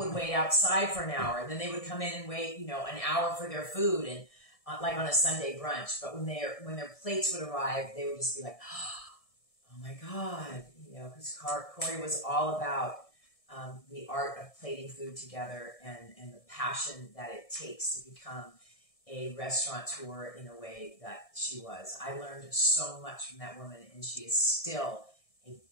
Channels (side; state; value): right; late; 1.6 ms